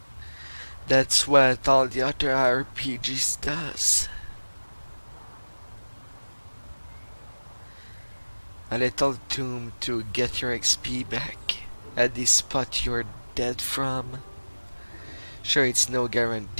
That's what all the other RPGs does. a little tomb to get your XP back at the spot you're dead from. Sure, it's no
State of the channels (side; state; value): both; inverted; correlation -1.00